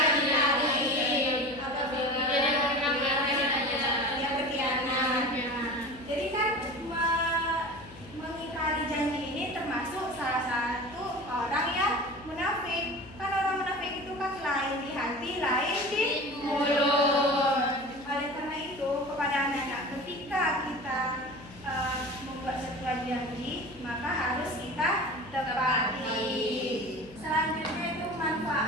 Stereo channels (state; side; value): noise; left; hum, 20 dB below the sound